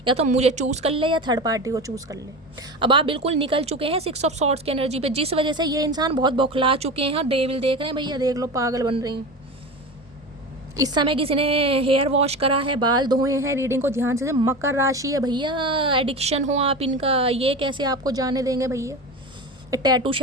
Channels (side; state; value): both; normal; correlation 0.27